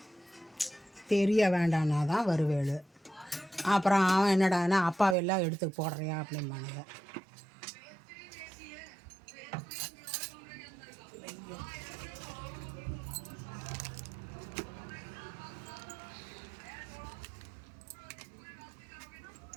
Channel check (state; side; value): drops out; left; at 5.2 s